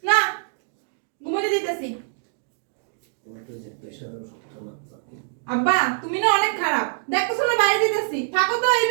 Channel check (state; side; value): silent; left; digital silence